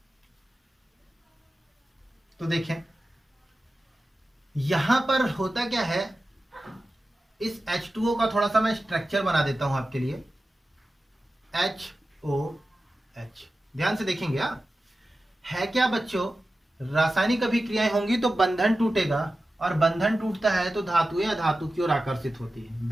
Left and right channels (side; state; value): both; normal; correlation 0.94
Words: तो देखें यहां पर होता क्या है, इस H2O का थोड़ा सा मैं स्ट्रक्चर बना देता हूं आपके लिए। HOH ध्यान से देखेंगे। है क्या बच्चों, रासायनिक अभिक्रियाएं होंगी तो बंधन टूटेगा, और बंधन टूटता है तो धातुएं अधातु की ओर आकर्षित होती है,